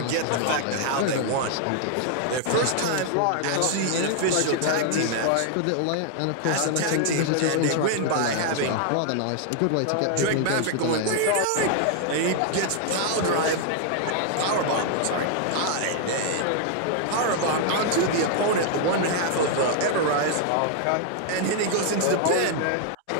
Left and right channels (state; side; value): different; both; correlation 0.00